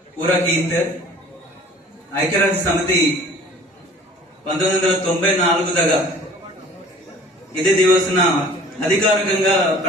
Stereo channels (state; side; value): normal; both; correlation 0.49